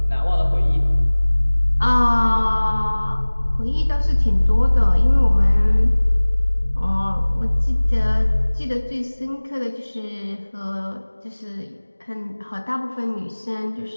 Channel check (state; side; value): inverted; both; correlation -1.00